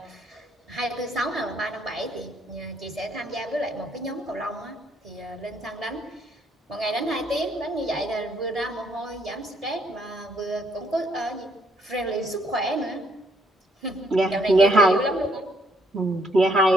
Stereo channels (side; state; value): both; normal; correlation 0.69